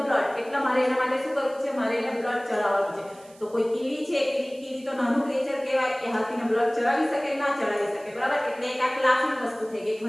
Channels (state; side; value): noise; right; hiss, 26 dB below the sound